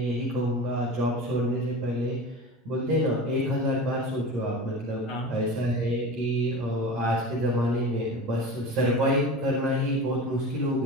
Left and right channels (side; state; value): both; normal; correlation 0.32